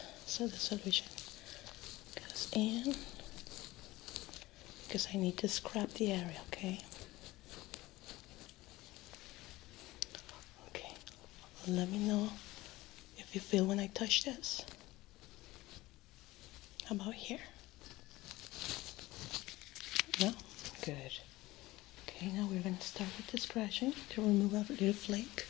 so the solution goes in, because I need to scrub the area, okay? Let me know if you feel when I touch this. How about here? No? Good. Okay, now we're going to start with the scratching to remove a little flake.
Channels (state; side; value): quieter; right; 18.8 dB